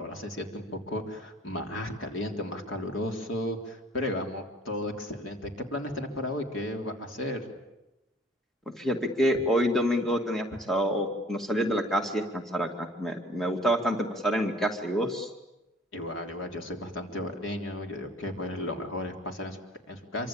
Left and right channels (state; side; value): normal; both; correlation 0.52